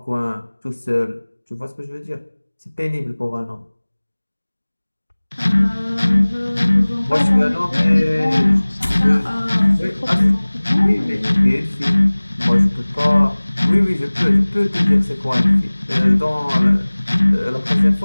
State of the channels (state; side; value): inverted; both; correlation -1.00